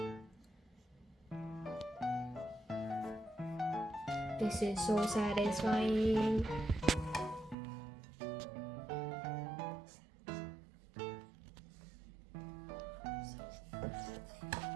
This is so satisfying.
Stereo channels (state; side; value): drops out; left; at 7.6 s